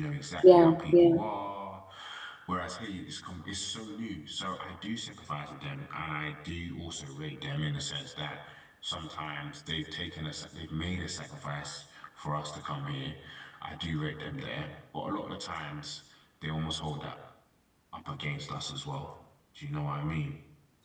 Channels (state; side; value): identical; both; correlation 1.00